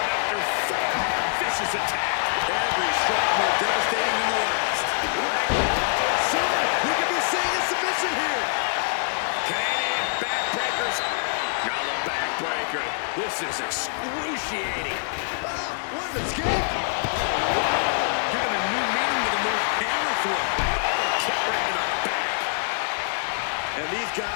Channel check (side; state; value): right; silent; digital silence